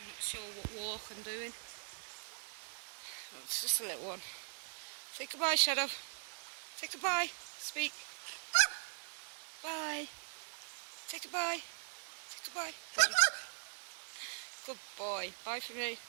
not sure what walk I'm doing. Well, it's just a little one. Say goodbye, Shadow. Say goodbye. Speak. Bye. Say goodbye. Say goodbye. Good boy. Bye for me.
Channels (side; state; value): left; silent; digital silence